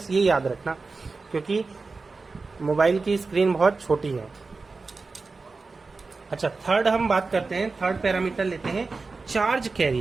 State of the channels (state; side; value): quieter; left; 4.0 dB